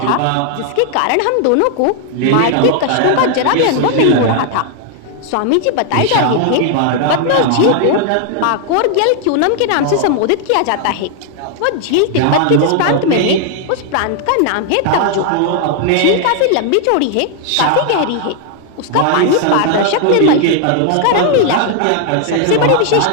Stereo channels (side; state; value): both; different; correlation 0.00